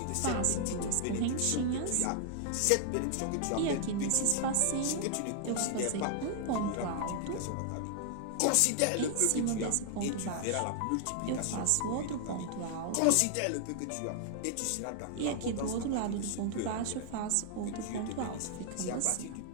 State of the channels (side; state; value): both; different; correlation 0.00